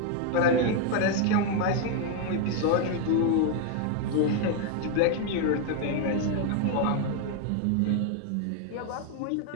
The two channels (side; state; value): both; different; correlation 0.01